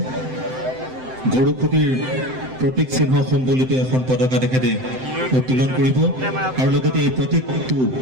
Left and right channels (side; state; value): left; late; 7.8 ms